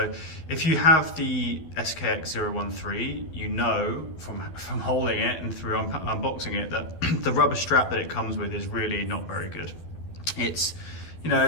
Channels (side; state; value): right; late; 12 ms